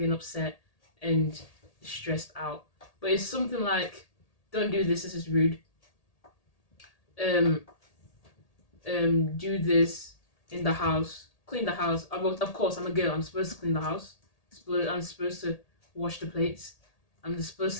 and upset and stressed out. But it's something like, don't do this is rude. Do this in the house, clean the house. Of course, I'm a girl. I'm supposed to clean the house. I'm supposed to wash the plates. I'm supposed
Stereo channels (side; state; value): right; late; 1.8 ms